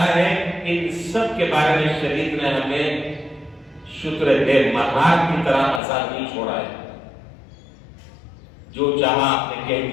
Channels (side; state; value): right; drops out; at 5.8 s